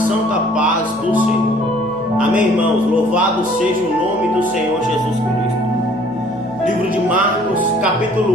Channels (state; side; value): noise; left; hum, 21 dB below the sound